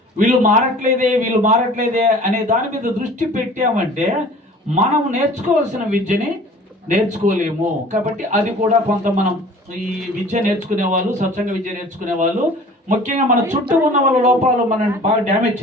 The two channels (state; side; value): normal; both; correlation 0.46